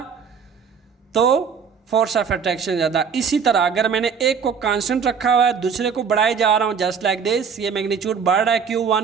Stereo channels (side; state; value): left; quieter; 6.4 dB